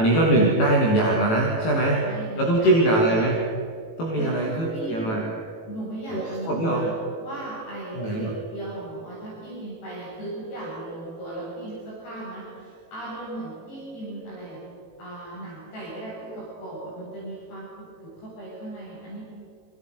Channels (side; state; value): right; late; 18 ms